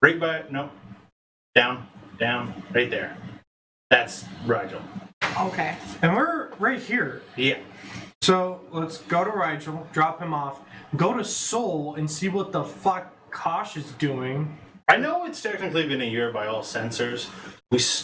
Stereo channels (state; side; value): identical; both; correlation 1.00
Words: Right by. No. Down. Right there. That's Rigel. Okay. And we're right here. Yeah. So let's go to Rigel, drop him off, go to Seoul and see what the fuck Kosh is doing. I know it's technically been a year by all sensors. We